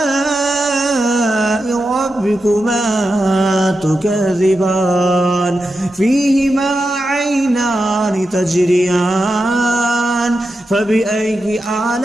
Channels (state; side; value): normal; both; correlation 0.89